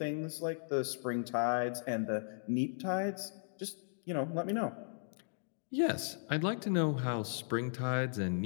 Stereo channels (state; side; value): silent; right; digital silence